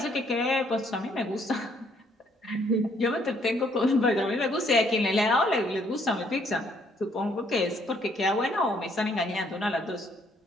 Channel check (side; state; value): both; normal; correlation 0.66